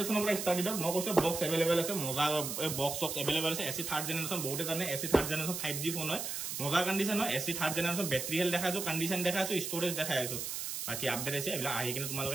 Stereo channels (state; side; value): noise; right; hiss, 4 dB below the sound